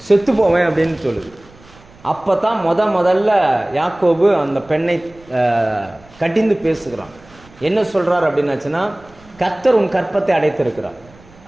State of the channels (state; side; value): noise; right; rumble, 26 dB below the sound